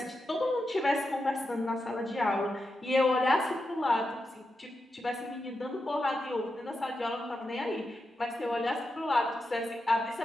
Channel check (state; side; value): normal; both; correlation 0.88